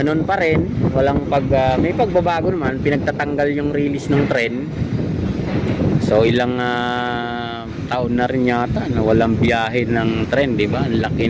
pa rin, walang may pagbabago naman, pinagtatanggal yung release ng tren. So ilang taon na rin yata na walang biyahe ng tren, di ba? Ang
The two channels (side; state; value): both; identical; correlation 1.00